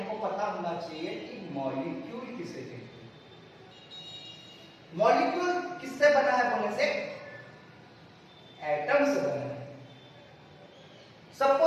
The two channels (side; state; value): both; identical; correlation 1.00